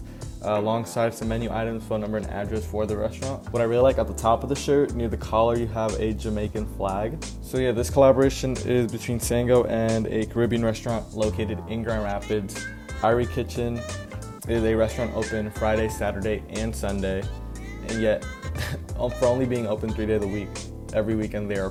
alongside some menu items, phone number, and address for the restaurant. What I really like, at the top of the shirt, near the collar, you have a Jamaican flag. So yeah, this collaboration is between Sango and a Caribbean restaurant located in Grand Rapids. Irie Kitchen is a restaurant open Friday, Saturday, and Sunday, and yet for only being open 3 days a week, every weekend they are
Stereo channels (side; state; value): both; identical; correlation 1.00